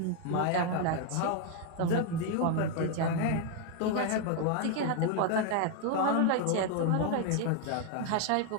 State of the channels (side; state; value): both; different; correlation 0.01